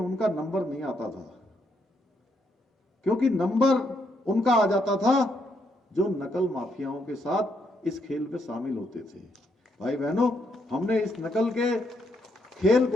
नंबर नहीं आता था, क्योंकि नंबर उनका आ जाता था जो नकल माफियाओं के साथ इस खेल में शामिल होते थे। भाई बहनों, हमने इस नकल के खेल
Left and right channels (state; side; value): normal; both; correlation 0.76